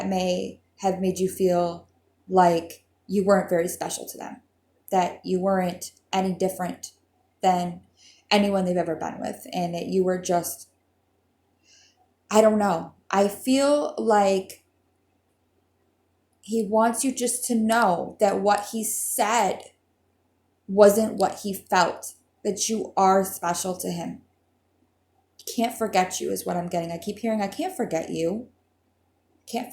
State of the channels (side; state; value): both; identical; correlation 1.00